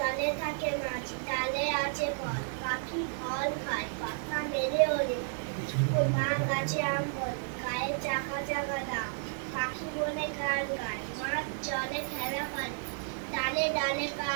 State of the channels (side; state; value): left; silent; 56 dB below the other